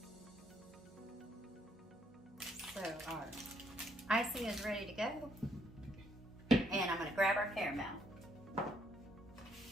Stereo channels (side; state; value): both; normal; correlation 0.71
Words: So our icing is ready to go. And I'm going to grab our caramel.